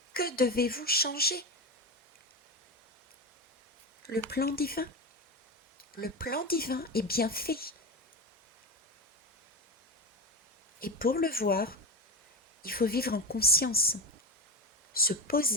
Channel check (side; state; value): both; normal; correlation 0.20